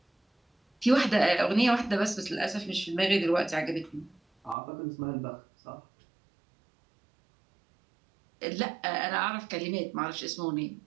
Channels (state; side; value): drops out; left; at 4.5 s